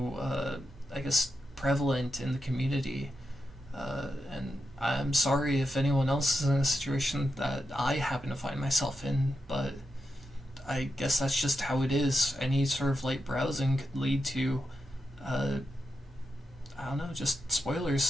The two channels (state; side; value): normal; both; correlation 0.86